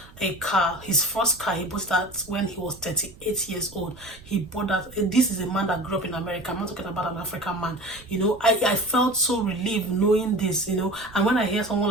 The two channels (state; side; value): noise; right; rumble, 22 dB below the sound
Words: a car. His first car, he bought that when he was 38 years old. He bought that. This is a man that grew up in America. I'm not talking about an African man. I felt so relieved knowing this, and when I hear someone